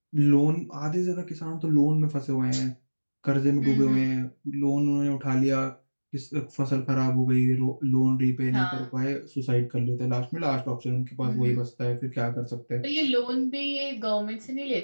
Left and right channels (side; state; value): both; inverted; correlation -1.00